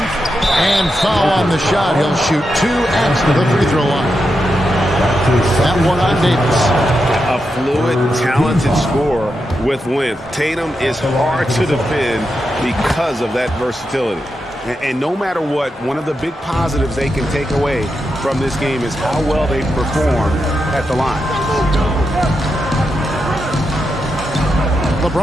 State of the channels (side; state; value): both; normal; correlation 0.86